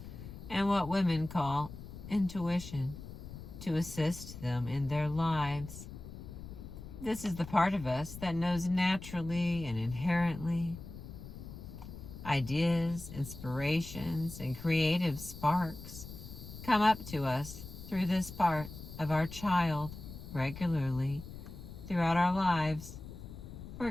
and what women call intuition, to assist them in their lives. This is the part of us that knows naturally and inherently. Ideas, inspirations, and creative sparks come up to us through this part of our child regularly throughout our lives. For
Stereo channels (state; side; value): noise; left; rumble, 12 dB below the sound